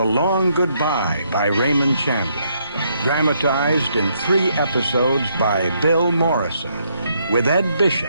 Long Goodbye by Raymond Chandler, dramatized in 3 episodes by Bill Morrison, with Ed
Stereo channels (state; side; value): inverted; both; correlation -0.73